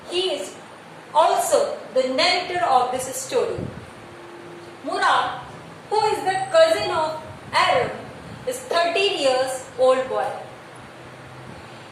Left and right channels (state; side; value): identical; both; correlation 1.00